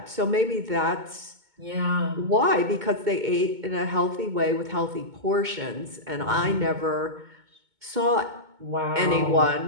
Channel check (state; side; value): late; left; 2.2 ms